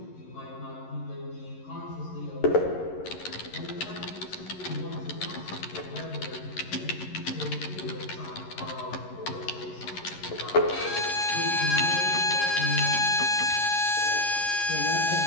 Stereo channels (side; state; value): right; late; 11 ms